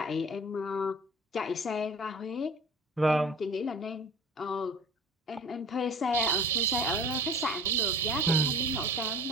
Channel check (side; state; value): both; normal; correlation 0.43